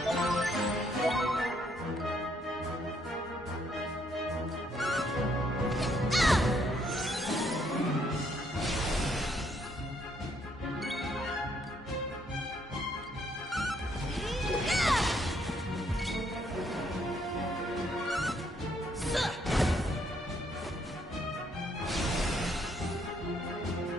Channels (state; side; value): normal; both; correlation 0.70